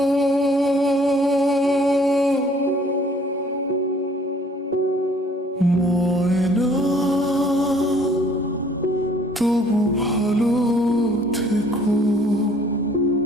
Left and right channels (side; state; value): both; normal; correlation 0.58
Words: ময়না, তবু ভালো থেকো।